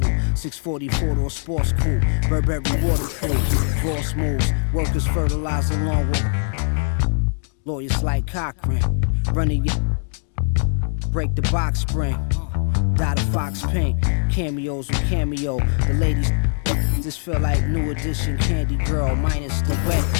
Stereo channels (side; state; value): right; silent; digital silence